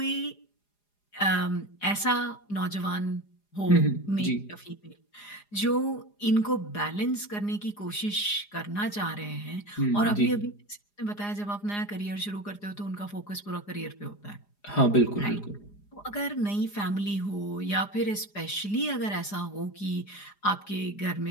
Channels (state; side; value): late; right; 4.9 ms